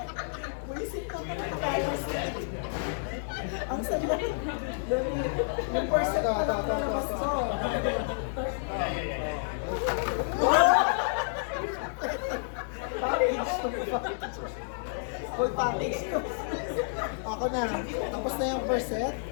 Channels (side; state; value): right; silent; digital silence